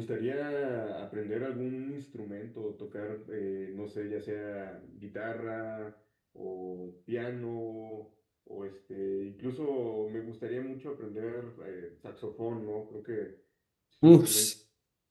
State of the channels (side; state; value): both; identical; correlation 1.00